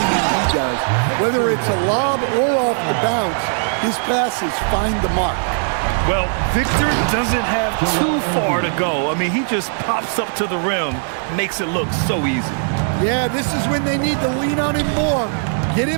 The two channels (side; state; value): left; silent; digital silence